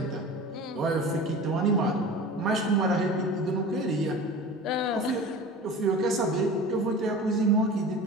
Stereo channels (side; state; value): both; normal; correlation 0.36